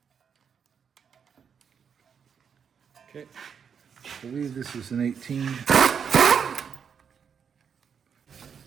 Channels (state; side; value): quieter; left; 7.1 dB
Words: Okay, I believe this is an 18.